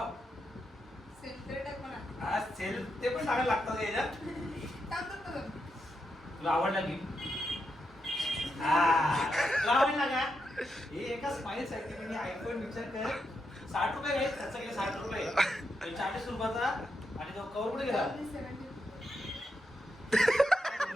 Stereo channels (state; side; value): normal; both; correlation 0.84